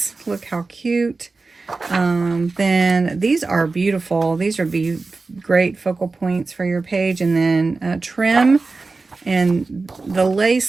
Look how cute. Then these are beautiful. These would be great focal points for your page. And then trim. And the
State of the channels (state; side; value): quieter; left; 3.8 dB